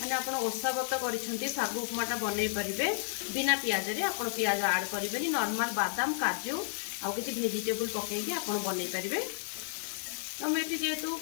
आपण ओसा व्रत करिसंती सागु उपमाटा बनै परिबे बिना पियाज रे। आपण पियाज ऐड करिबेनी। नॉर्मल बादाम काजू आ किछि वेजिटेबल पकै के आपण बनै परिबे। तो मैं जेहेतु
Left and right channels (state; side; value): silent; right; digital silence